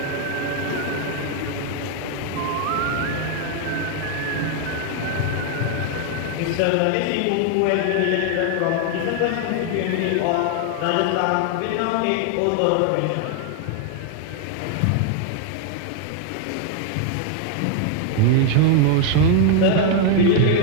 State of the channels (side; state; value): both; different; correlation 0.00